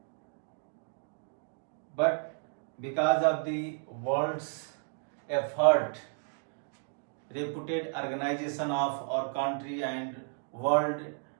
But because of the world's effort, reputed organization of our country and world,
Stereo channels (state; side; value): silent; left; 56 dB below the other